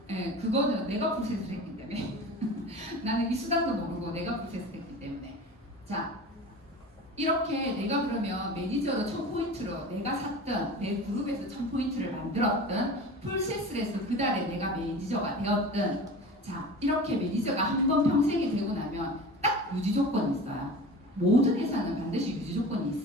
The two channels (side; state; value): both; normal; correlation 0.35